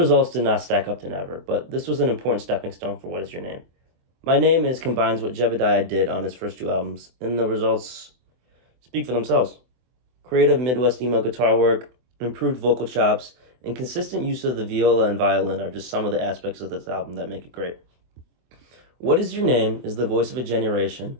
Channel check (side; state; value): left; late; 24 ms